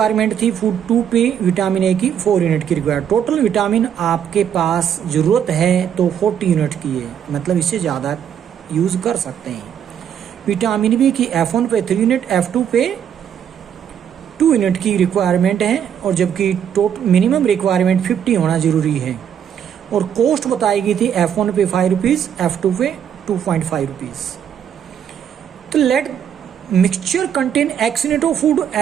थी, फूड 2 पे विटामिन ए की 4 यूनिट की रिक्वायरमेंट। टोटल विटामिन आपके पास ज़रूरत है तो 40 यूनिट की है, मतलब इससे ज़्यादा यूज़ कर सकते हैं। विटामिन बी की F1 पे 3 यूनिट, F2 पे 2 यूनिट की रिक्वायरमेंट है, और जबकि टोटल मिनिमम रिक्वायरमेंट 50 होना ज़रूरी है। और कॉस्ट बताई गई थी F1 पे 5 रुपीज़, F2 पे 2.5 रुपीज़। तो let mixture contain X unit of food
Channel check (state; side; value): quieter; left; 8.8 dB